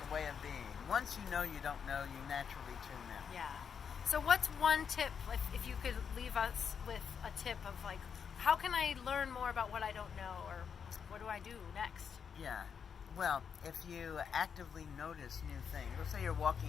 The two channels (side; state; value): right; quieter; 6.9 dB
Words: a way of being. Once you know you don't know, you naturally tune in. Yeah. So what's one tip, if you could leave us with a tip of like, how can I learn more about what I don't know, or what do I do next? Yeah. Well, if you actively notice new things, let's say you're